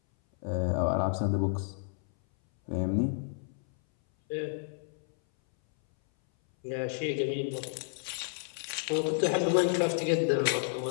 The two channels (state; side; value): silent; right; 57 dB below the other